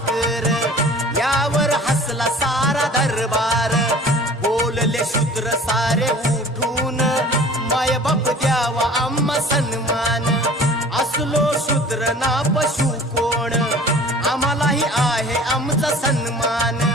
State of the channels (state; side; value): normal; both; correlation 0.45